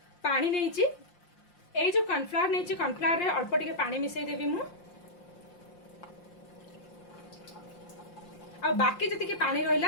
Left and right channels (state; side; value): late; right; 5.7 ms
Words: पानी नेइछि। ए जो कॉर्नफ्लावर नेइछि, कॉर्नफ्लावर रे अल्प टिके पानी मिसई देबी मु। आ बाकी जति के पानी